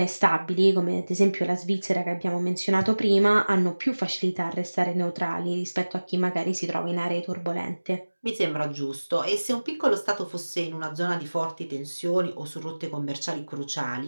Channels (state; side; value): inverted; both; correlation -1.00